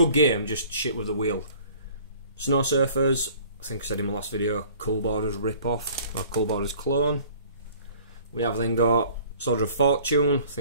game, just shit with the wheel. Snow Surfers. I think I said in my last video, Cool Borders rip-off, or Cool Borders clone. We have then got Soldier of Fortune. I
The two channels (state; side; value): inverted; both; correlation -0.52